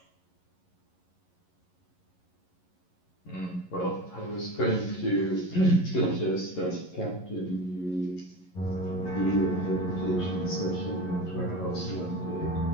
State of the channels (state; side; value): late; right; 11 ms